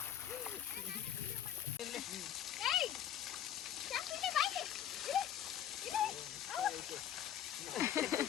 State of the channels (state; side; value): quieter; right; 10.3 dB